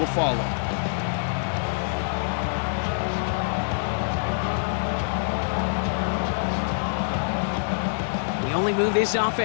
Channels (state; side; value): silent; right; 57 dB below the other